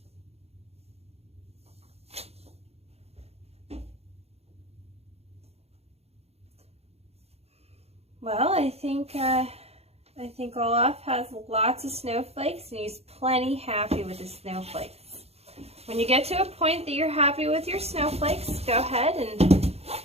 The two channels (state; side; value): late; left; 0.30 ms